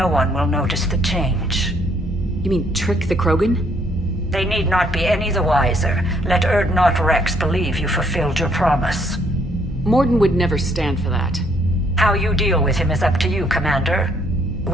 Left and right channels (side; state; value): both; normal; correlation 0.68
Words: one will notice the change. You mean trick the Krogan? They need not be any the wiser. Let Urdnot Rex believe you fulfilled your promise. Morden would never stand for that. How you deal with him is up to you, Commander.